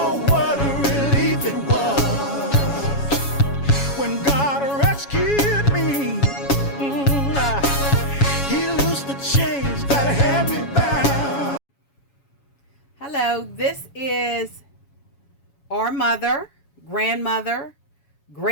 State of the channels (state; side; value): late; right; 7.2 ms